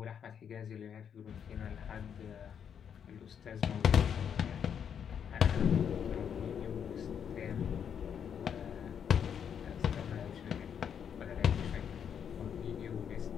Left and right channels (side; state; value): right; quieter; 8.0 dB